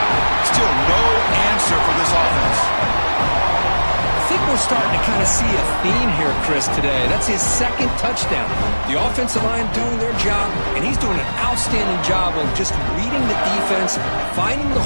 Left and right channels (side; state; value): both; inverted; correlation -1.00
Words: Still no answer for this offense. I think we're starting to kind of see a theme here, Chris, today. That's his second touchdown. The offensive line doing their job, and he's doing an outstanding job of just reading the defense, finding the